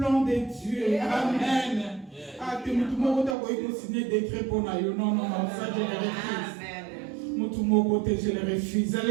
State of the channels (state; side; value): drops out; left; at 3.4 s